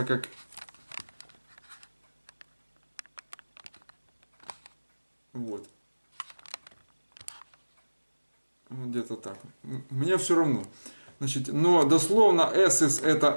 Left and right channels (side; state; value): both; inverted; correlation -1.00